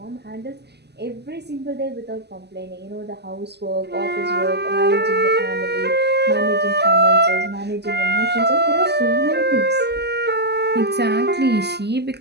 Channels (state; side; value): late; left; 0.49 ms